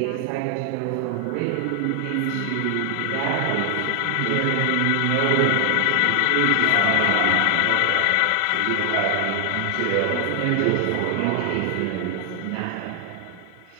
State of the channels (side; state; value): both; different; correlation 0.00